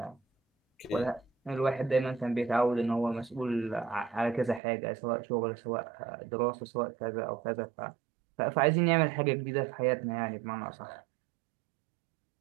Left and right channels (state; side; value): drops out; left; at 4.6 s